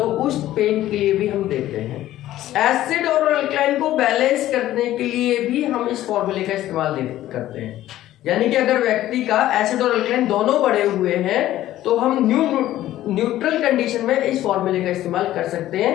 उस पेन के लिए भी हम देते हैं। एसिड और अल्कलाइन को बैलेंस करने के लिए भी हम इस फॉर्मूले का इस्तेमाल करते हैं। यानी कि अगर व्यक्ति का एसिड और अल्कलाइन दोनों बढ़े हुए हैं तो हम न्यूट्रल कंडीशन में इस फॉर्मूले का इस्तेमाल कर सकते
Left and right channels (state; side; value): quieter; right; 14.0 dB